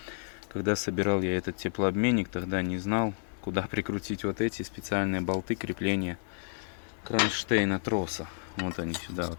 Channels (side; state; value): right; silent; 57 dB below the other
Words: Когда собирал я этот теплообменник, тогда не знал, куда прикрутить вот эти специальные болты крепления кронштейна троса. Вот они сюда вот